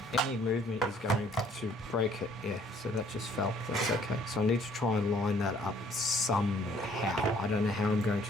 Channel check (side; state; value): both; normal; correlation 0.60